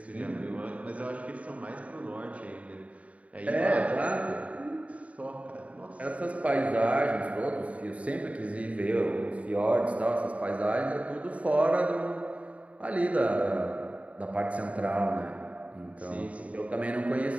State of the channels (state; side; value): late; left; 0.067 ms